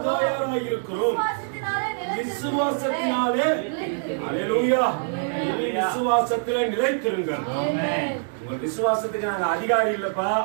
இருக்கிறோம். விசுவாசத்தினாலே அல்லேலூயா. இனி விசுவாசத்திலே நிலைத்திருங்கள். உங்க விசுவாசத்துக்கு நாங்க அதிகாரி இல்லப்பா,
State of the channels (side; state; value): left; silent; digital silence